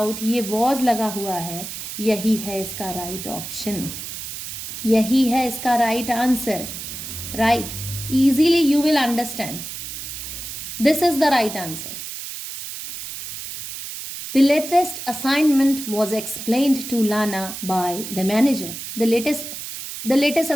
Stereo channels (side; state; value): right; noise; hiss, 8 dB below the sound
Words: ये वॉज लगा हुआ है, यही है इसका राइट ऑप्शन, यही है इसका right answer, right? Easily you will understand this is the right answer. The latest assignment was explained to Lana by the manager. The latest